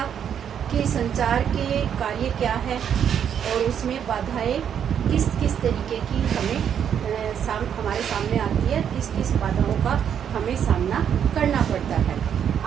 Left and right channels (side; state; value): left; quieter; 8.6 dB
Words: कि संचार के कार्य क्या है और उसमें बाधाएं किस किस तरीके की हमारे सामने आती है, किस किस बाधाओं का हमें सामना करना पड़ता है।